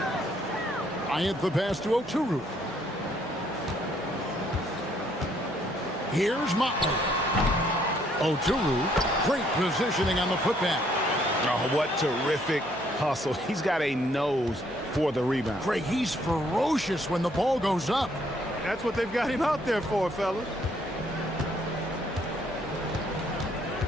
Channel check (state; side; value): noise; right; hum, 20 dB below the sound